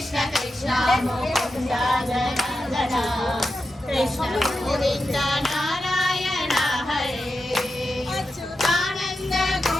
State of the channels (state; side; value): normal; both; correlation 0.89